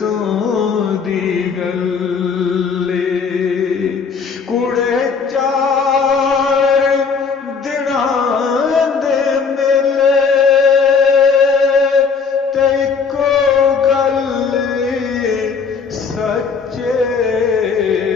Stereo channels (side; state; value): right; quieter; 5.5 dB